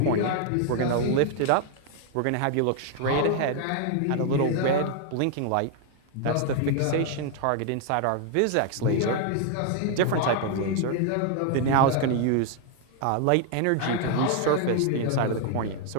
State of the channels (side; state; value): both; different; correlation 0.00